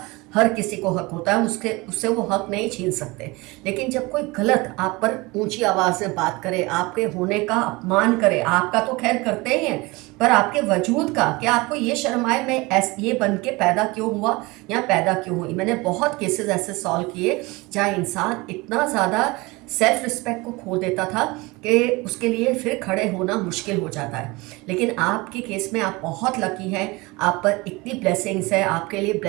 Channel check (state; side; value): quieter; left; 23.7 dB